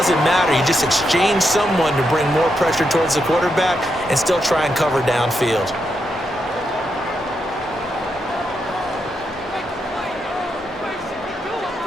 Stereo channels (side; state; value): both; normal; correlation 0.82